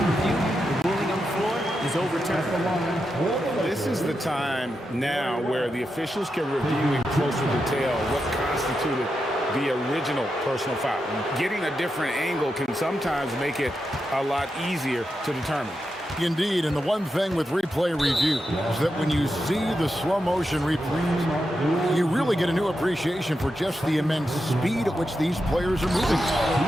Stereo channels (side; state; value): both; normal; correlation 0.87